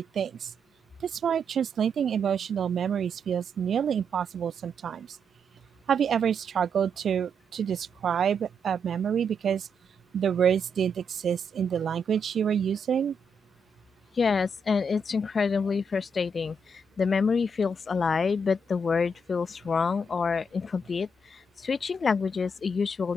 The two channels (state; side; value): normal; both; correlation 0.78